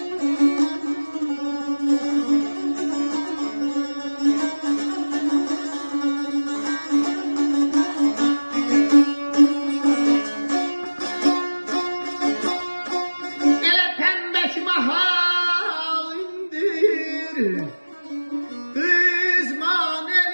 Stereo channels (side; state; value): both; inverted; correlation -1.00